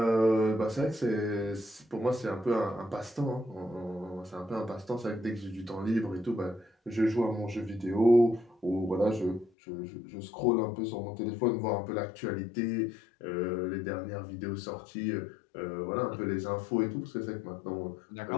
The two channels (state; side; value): drops out; right; at 9.5 s